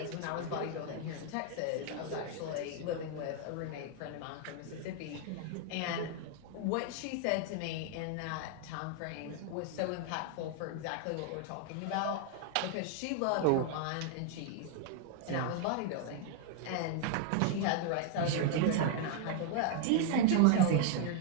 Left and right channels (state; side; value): different; both; correlation 0.00